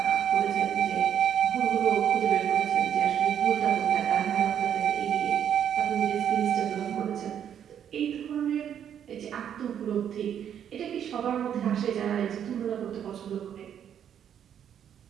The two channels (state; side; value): quieter; left; 9.2 dB